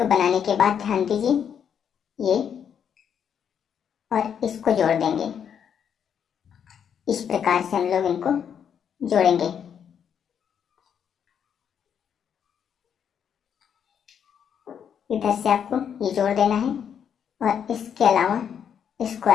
बनाने के बाद ध्यान दीजिए ये और इसको जोड़ देंगे। इस प्रकार से हम लोग इनको जोड़ेंगे। इधर से आपको ये जोड़ देना है और इसके अलावा इसको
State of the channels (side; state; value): right; quieter; 8.1 dB